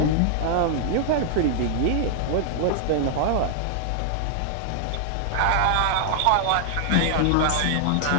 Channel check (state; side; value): different; both; correlation 0.00